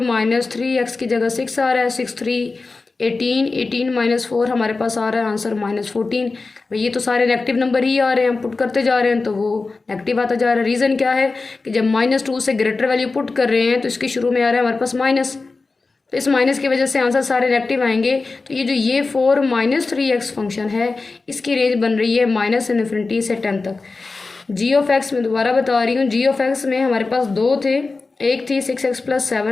3 x की जगह 6 आ रहा है, 6 3 18, 18 - 4 हमारे पास आ रहा है आंसर -14। ये तो सारे नेगेटिव नंबर ही आ रहे हैं, हम पुट करते जा रहे हैं तो वो नेगेटिव आता जा रहा है। रीज़न क्या है कि जब -2 से ग्रेटर वैल्यू पुट कर रहे हैं तो इसके शुरू में आ रहा है हमारे पास माइनस, तो इस माइनस की वजह से आंसर सारे नेगेटिव आएंगे। तो ये 4 - 3x फंक्शन है, इसकी रेंज बन रही है -∞ से 10 तक। g(x) में दोबारा बता रही हूँ, g(x) में हमारे पास दो थे, एक थी 6x +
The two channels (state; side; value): quieter; right; 3.9 dB